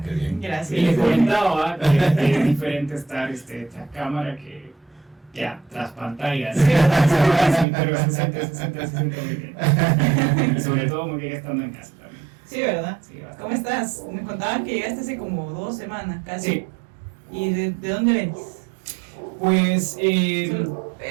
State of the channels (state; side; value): drops out; left; at 7.7 s